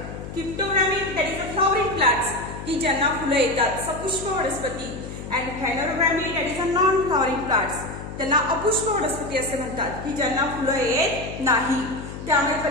Cryptogamae that is a flowering plants की ज्यांना फुलं येतात सपुष्प वनस्पती and phanerogamae that is a non flowering plants त्यांना अपुष्प वनस्पती असे म्हणतात की ज्यांना फुलं येत नाही। त्यामुळे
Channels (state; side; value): noise; left; hum, 10 dB below the sound